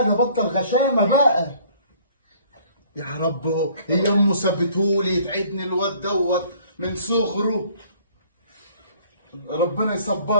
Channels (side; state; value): both; inverted; correlation -0.57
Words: بطل غشامه بقى. يا رب هي امه سابتهولي يتعبني الواد دوت من صغره. ربنا